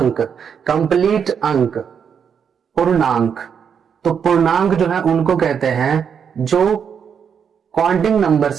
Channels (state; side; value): quieter; left; 7.2 dB